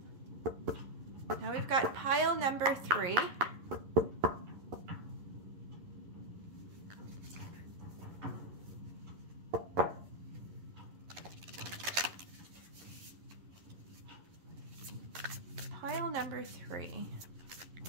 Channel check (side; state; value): left; late; 11 ms